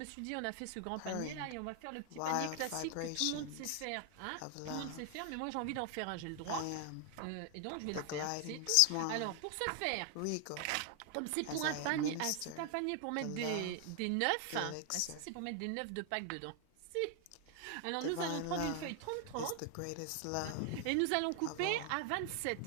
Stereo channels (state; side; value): different; both; correlation 0.00